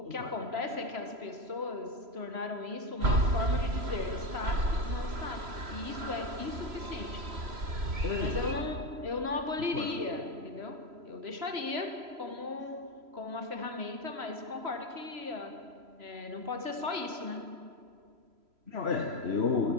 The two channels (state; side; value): late; left; 3.0 ms